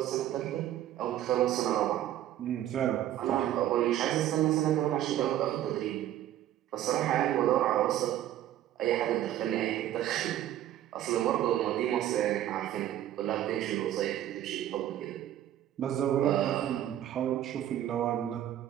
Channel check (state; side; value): quieter; left; 12.4 dB